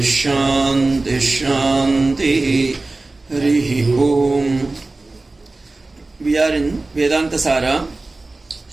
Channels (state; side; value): quieter; left; 3.2 dB